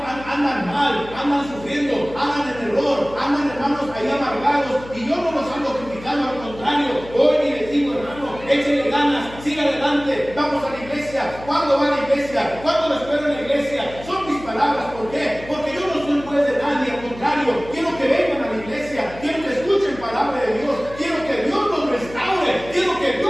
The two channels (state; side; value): noise; left; hum, 16 dB below the sound